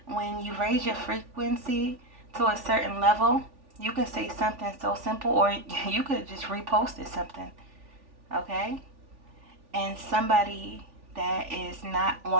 when you raise your frequency to a certain level, you can say something so simple, or you could have just reposted something, okay? And somebody that is not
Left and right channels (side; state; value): left; late; 3.4 ms